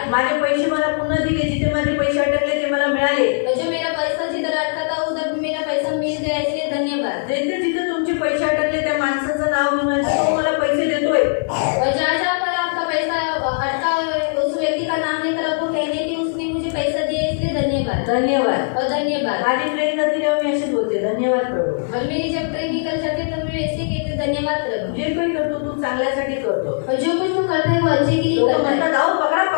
माझे पैसे मला पुन्हा दिले. जिथे माझे पैसे अटकले ते मला मिळाले. और जो मेरा पैसा जिधर अटका था उधर मेरा पैसा मिल गया इसलिए धन्यवाद. जिथे जिथे तुमचे पैसे अटकले त्या माणसाचं नाव घेऊन तो मला पैसे देतोय. और जहाँ जहाँ पर आपका पैसा अटका उस व्यक्ती का नाम लेकर आपको कहने की उसने मुझे पैसा दिया इसलिए धन्यवाद. धन्यवाद. और धन्यवाद. माझी ट्रेन जाते तेव्हा मी अशीच बोलते. धन्यवाद प्रभू. और मेरी जब ट्रेन निकल जाती तो मैं ऐसे कहते धन्यवाद प्रभु. जे काही करतो तू चांगल्यासाठी करतो. और जो कुछ तुम करते हो वो अच्छे के लिए लोक करता है. म्हणतात अहो पकडा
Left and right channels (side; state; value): right; silent; digital silence